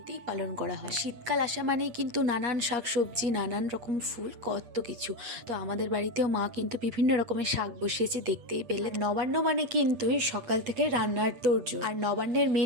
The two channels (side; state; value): left; late; 8.4 ms